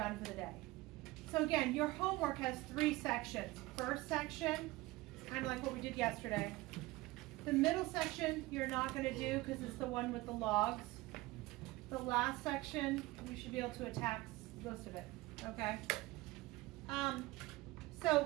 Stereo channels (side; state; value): left; quieter; 19.8 dB